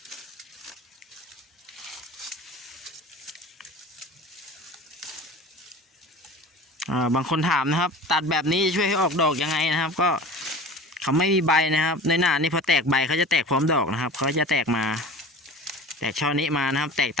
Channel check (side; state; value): both; normal; correlation 0.38